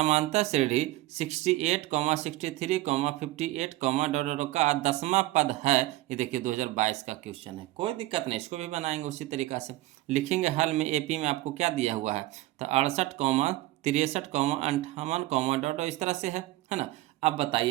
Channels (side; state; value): left; quieter; 17.5 dB